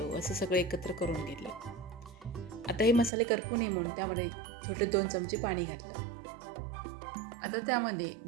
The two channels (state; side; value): drops out; left; at 3.1 s